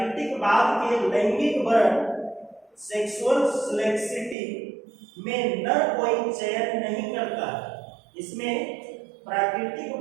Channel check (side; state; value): left; drops out; at 4.4 s